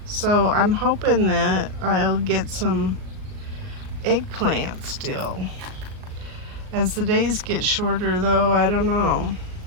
So I'm hoping that I'll get some eggplant still. As the days get shorter though, I don't know.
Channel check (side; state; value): left; late; 38 ms